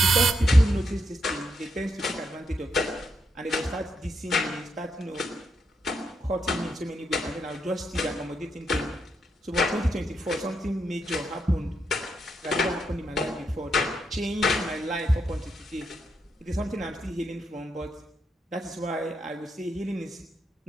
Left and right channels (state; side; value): normal; both; correlation 0.81